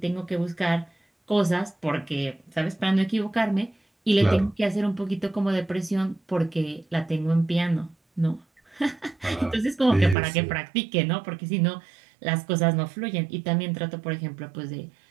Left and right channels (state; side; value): drops out; left; at 10.2 s